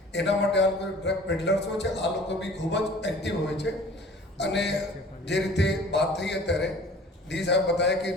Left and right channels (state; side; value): normal; both; correlation 0.47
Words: એના માટે આ લોકો ડ્રગ પેડલર્સ હોય છે, આ લોકો બી ખૂબ જ એક્ટિવ હોય છે। અને જે રીતે વાત થઈ અત્યારે ડી સાહેબ બતાવ્યા કે